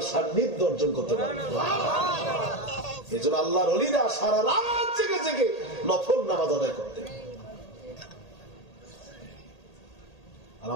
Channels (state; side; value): late; right; 1.8 ms